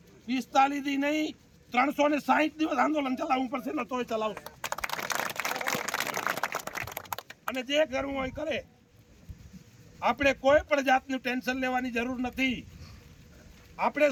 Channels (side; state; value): both; identical; correlation 1.00